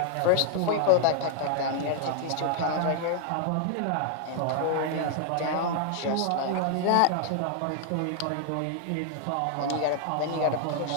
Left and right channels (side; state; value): both; different; correlation 0.00